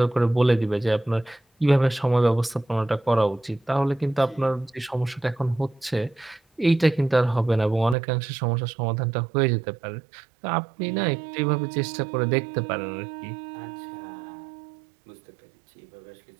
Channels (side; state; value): left; drops out; at 8.0 s